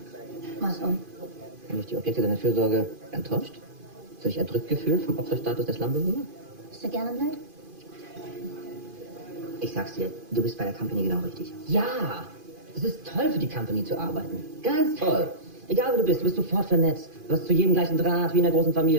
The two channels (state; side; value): late; left; 2.5 ms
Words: Was und? Haben dich die Objekte deiner Fürsorge enttäuscht? Hast du dich erdrückt gefühlt vom Opferstatus der Slumbewohner? Bist du gerne blöd? Ich sag's dir, du bist bei der Company genau richtig. Ja! Es ist toll, für die Company zu arbeiten. Ganz toll. Egal, wo du bist sofort vernetzt. Du hast zu jedem gleichen Draht, wie in einer großen